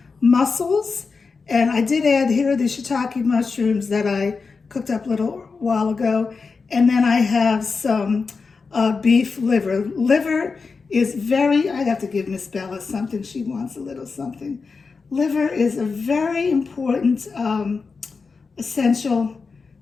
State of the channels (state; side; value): quieter; right; 4.7 dB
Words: mussels, and I did add here the shiitake mushrooms that I cooked up a little while ago. And then I have some beef liver. Liver is very, I'd have to give Miss Bella something. She wants a little something. Liver is a very important essential